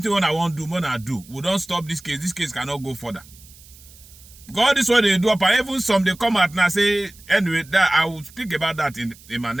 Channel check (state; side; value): noise; right; hiss, 23 dB below the sound